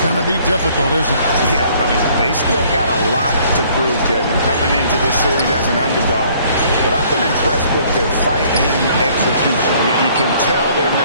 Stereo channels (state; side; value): inverted; both; correlation -0.60